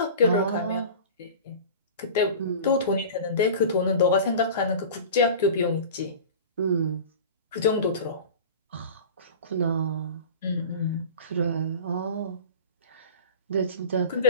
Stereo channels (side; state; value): both; inverted; correlation -0.36